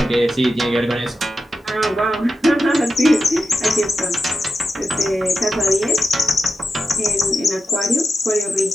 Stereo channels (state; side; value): normal; both; correlation 0.90